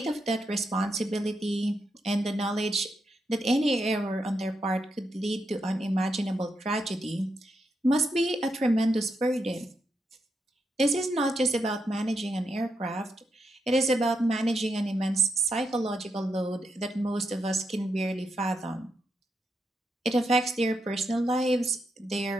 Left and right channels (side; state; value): both; normal; correlation 0.83